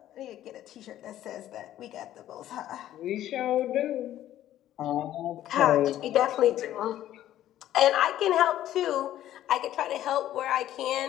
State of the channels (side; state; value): right; quieter; 12.7 dB